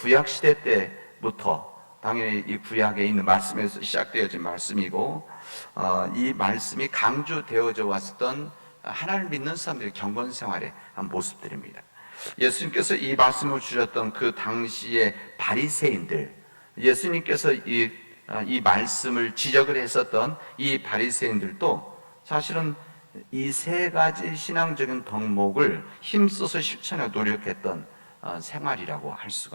시대 때부터 당연히 이 구약에 있는 말씀에서 시작되어진 말씀이고, 이 말씀이 강조되어져 왔던 하나님을 믿는 사람들의 경건생활의 한 모습들입니다. 예수님께서 이 말씀을 주셨던 그 당시의 바리새인들, 예수님께서 이 말씀을 지적을 했었던 이 바리새인들도 사실은 이 세 가지 신앙적인 덕목을 힘써서 실천해 노력했던 생활이라고 할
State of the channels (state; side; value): inverted; both; correlation -1.00